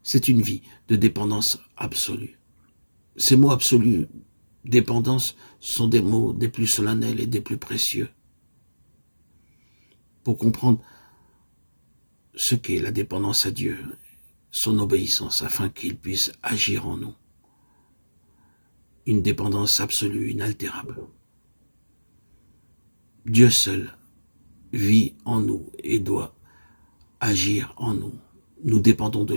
C'est une vie de dépendance absolue. Ces mots absolus, dépendance, sont des mots des plus solennels et des plus précieux. Pour comprendre ce qu'est la dépendance à Dieu, son obéissance, afin qu'il puisse agir en nous. Une dépendance absolue, inaltérable. Dieu seul vit en nous et doit agir en nous. Nous dépendons de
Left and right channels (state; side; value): inverted; both; correlation -1.00